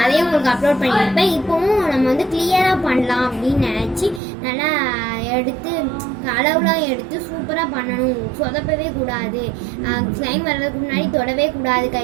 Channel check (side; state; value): left; drops out; at 4.2 s